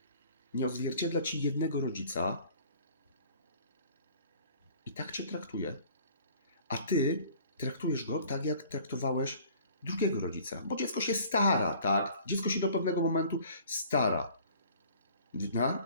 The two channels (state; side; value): inverted; both; correlation -0.51